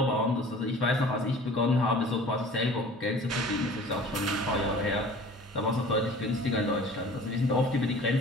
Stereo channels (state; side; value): normal; both; correlation 0.45